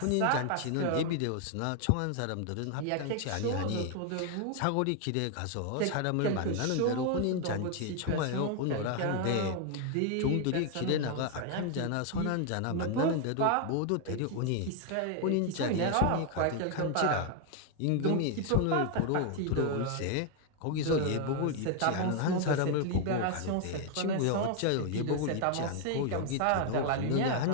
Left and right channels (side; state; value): both; different; correlation 0.00